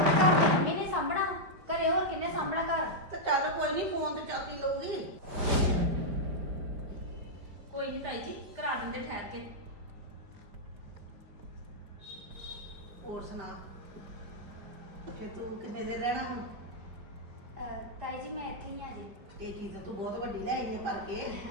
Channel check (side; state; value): left; late; 5.0 ms